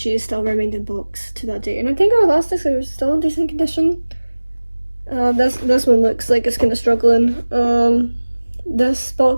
still remained in box to that day. And I think her elastics are still in decent condition. This one looks like it's kind of struggling. This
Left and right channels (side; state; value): both; inverted; correlation -1.00